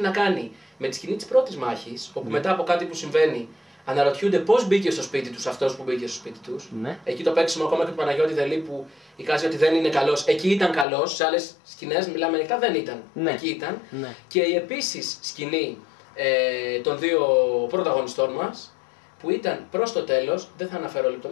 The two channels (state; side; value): drops out; right; at 10.9 s